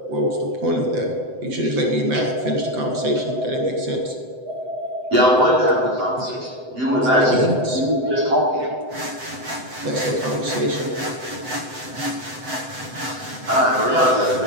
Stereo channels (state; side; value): late; left; 7.8 ms